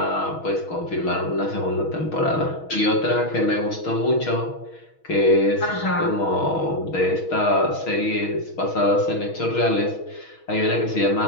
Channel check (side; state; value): right; late; 6.3 ms